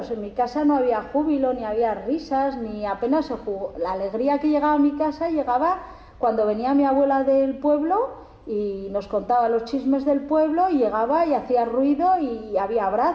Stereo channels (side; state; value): both; identical; correlation 1.00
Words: en mi casa no había júbilo, ni había risas, ni apenas se jugó. La alegría que llegaba a mi casa llegaba cuando venía mi abuela del pueblo y nos contaba los chismes del pueblo, y llegaba y hacía ruido y había